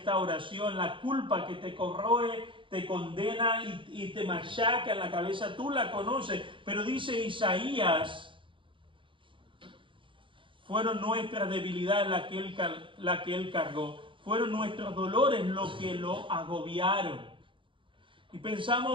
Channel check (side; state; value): left; late; 0.24 ms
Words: la culpa que te corroe, te condena y te machaca en la cabeza. Tú la conoces, pero dice Isaías, fueron nuestras debilidades la que Él cargó. Fueron nuestros dolores lo que lo agobiaron. Y